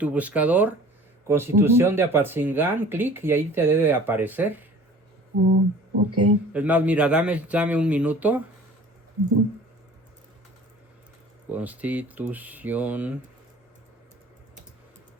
buscador Constitución de Apatzingán, clic y ahí te debe aparecer. Oh, ok. Es más, mira, dame un minuto. Ujú. Constitución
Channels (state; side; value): normal; both; correlation 0.46